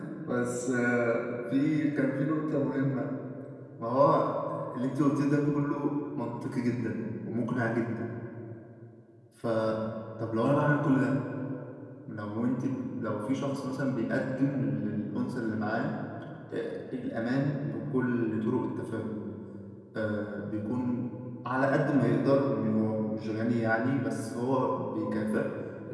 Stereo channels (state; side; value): identical; both; correlation 1.00